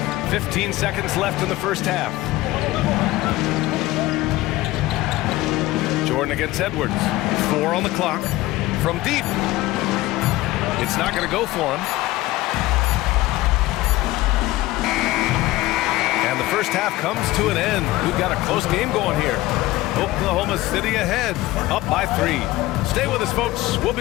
15 seconds left in the first half. Jordan against Edwards. 4 on the clock. From deep. It's not going to go for him. And the first half comes to an end. We've got a close game going here. Oklahoma City ahead, up by 3. Stay with us, folks. We'll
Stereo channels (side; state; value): right; quieter; 17.9 dB